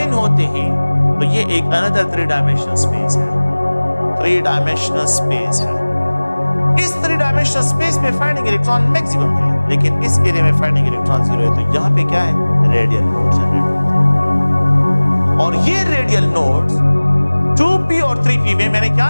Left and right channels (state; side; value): inverted; both; correlation -1.00